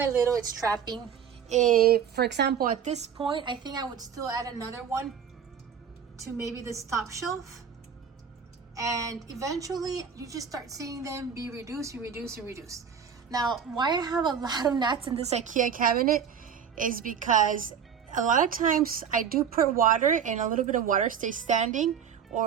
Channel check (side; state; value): left; quieter; 7.6 dB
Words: little it's trapping. For example, at this point, I think I would still add another one to maybe this top shelf. And eventually, you just start seeing them be reduced, reduced. Now, why I have a lot of gnats in this IKEA cabinet is because a lot of times I do put water, and a little bit of water stays standing,